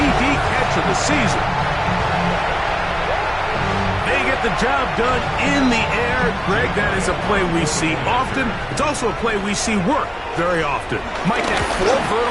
catch of the season. They get the job done in the air. Greg, that is a play we see often. It's also a play we see work very often. Mike, that 4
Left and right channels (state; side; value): identical; both; correlation 1.00